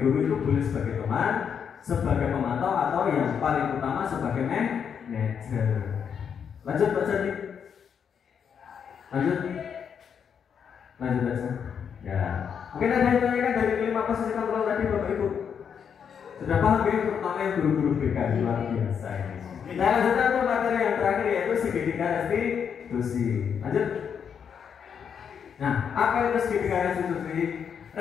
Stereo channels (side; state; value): right; quieter; 7.4 dB